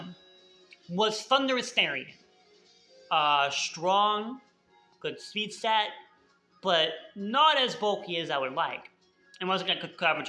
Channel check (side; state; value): both; identical; correlation 1.00